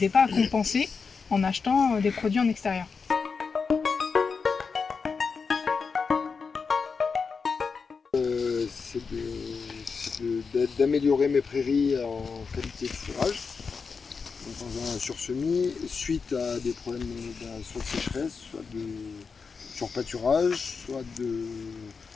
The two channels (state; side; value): quieter; right; 5.2 dB